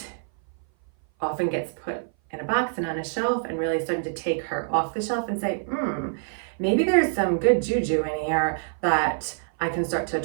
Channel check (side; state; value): left; silent; 58 dB below the other